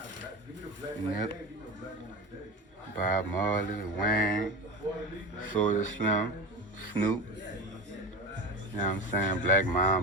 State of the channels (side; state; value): both; normal; correlation 0.26